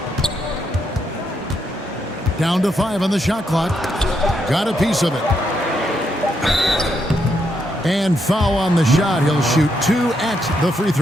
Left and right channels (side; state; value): both; normal; correlation 0.79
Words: Down to 5 on the shot clock. Got a piece of it. And foul on the shot. He'll shoot 2 at the free